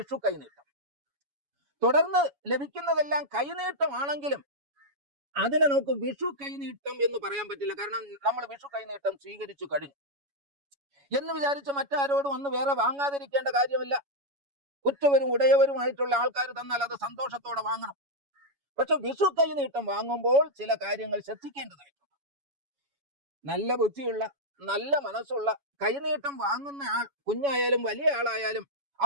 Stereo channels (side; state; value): left; late; 7.1 ms